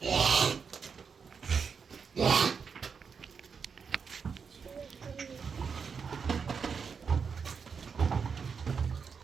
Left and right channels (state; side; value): quieter; left; 6.0 dB